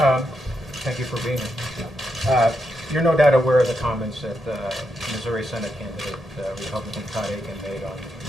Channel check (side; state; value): both; normal; correlation 0.83